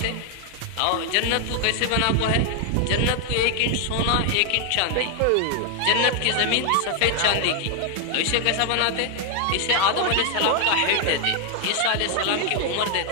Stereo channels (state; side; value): different; both; correlation 0.00